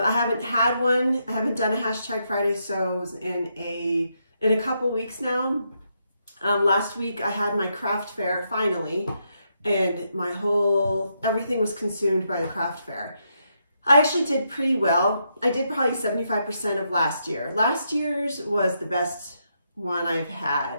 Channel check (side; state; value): both; inverted; correlation -0.80